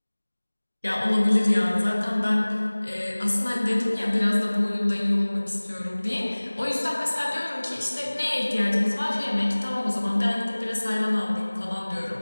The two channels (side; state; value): both; inverted; correlation -1.00